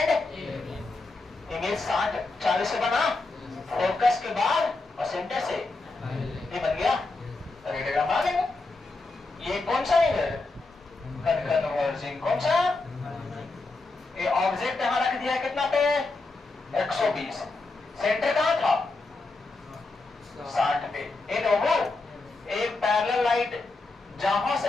इमेज 40 से बना, फोकस के बाद और सेंटर से ये बन गया, रेडियोग्राम आ गया। ये कौन सा है? कन्वर्जिंग कौन सा? ये ऑब्जेक्ट यहां रख दिया कितना पे? 120। सेंटर कहां था? 60 पे। इन वो एक पैरेलल लाइट जहां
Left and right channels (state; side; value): quieter; right; 3.4 dB